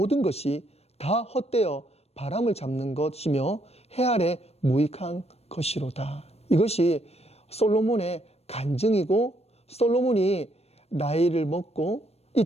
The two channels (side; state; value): right; late; 0.30 ms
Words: 것이 다 헛되어 바람을 잡는 것이며 해 아래 무익한 것이로다. 이것이 솔로몬의 간증이고, 솔로몬이 나이를 먹고 이